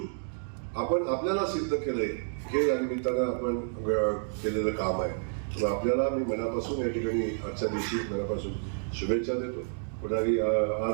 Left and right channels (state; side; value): silent; left; digital silence